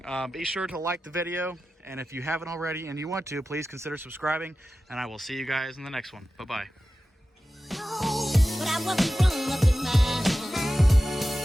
be sure to like the video, and if you haven't already and you want to, please consider subscribing, and I will see you guys in the next one. Bye-bye.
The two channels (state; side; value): normal; both; correlation 0.94